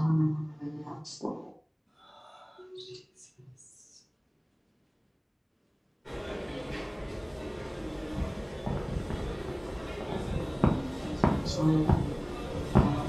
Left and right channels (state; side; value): identical; both; correlation 1.00